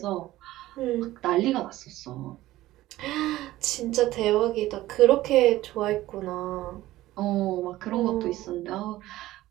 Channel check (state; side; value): quieter; left; 16.0 dB